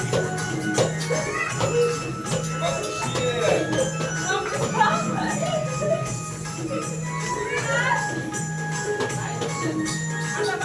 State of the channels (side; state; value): both; identical; correlation 1.00